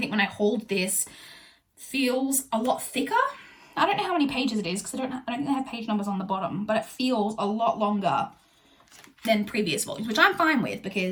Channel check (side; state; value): both; identical; correlation 1.00